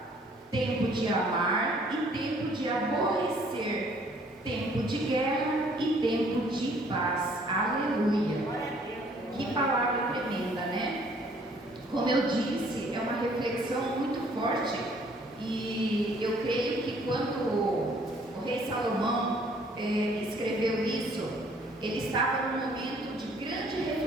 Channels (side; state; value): both; normal; correlation 0.60